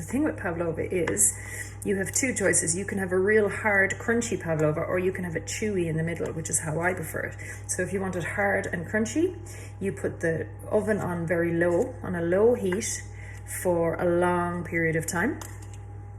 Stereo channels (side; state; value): both; identical; correlation 1.00